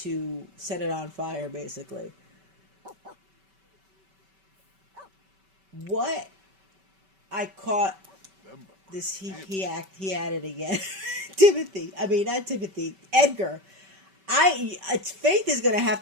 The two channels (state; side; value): late; left; 5.2 ms